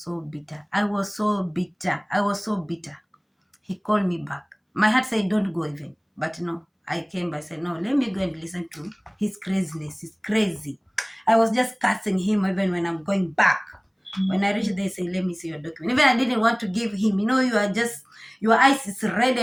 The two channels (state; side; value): identical; both; correlation 1.00